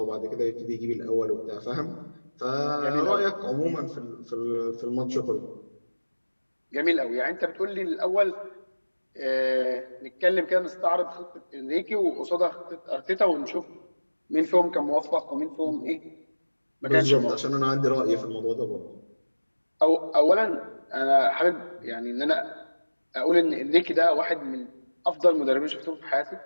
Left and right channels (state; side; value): inverted; both; correlation -1.00